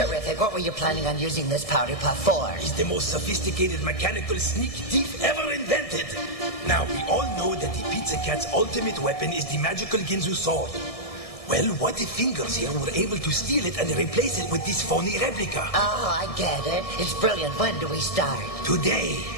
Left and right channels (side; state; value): right; late; 1.6 ms